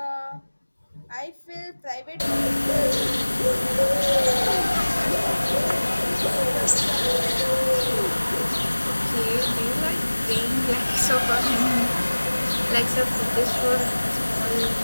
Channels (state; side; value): inverted; both; correlation -1.00